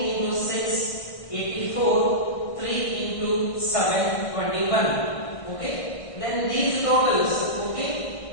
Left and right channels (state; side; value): late; right; 1.6 ms